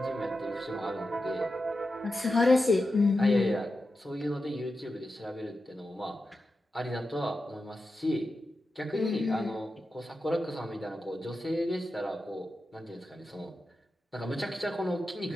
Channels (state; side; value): normal; both; correlation 0.90